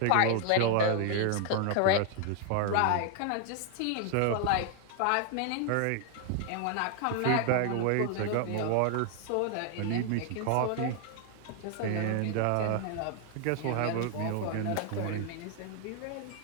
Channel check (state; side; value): different; both; correlation 0.00